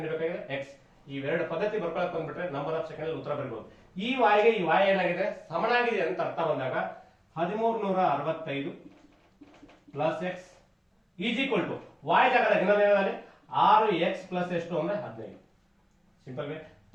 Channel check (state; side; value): identical; both; correlation 1.00